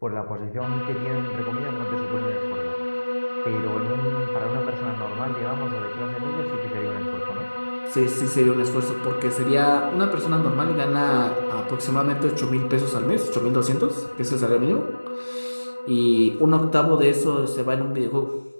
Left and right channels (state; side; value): inverted; both; correlation -1.00